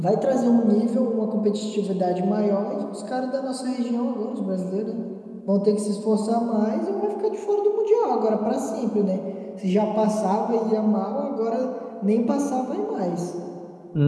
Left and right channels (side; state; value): both; identical; correlation 1.00